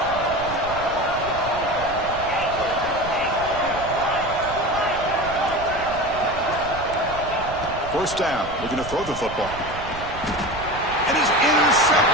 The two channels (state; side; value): noise; right; rumble, 12 dB below the sound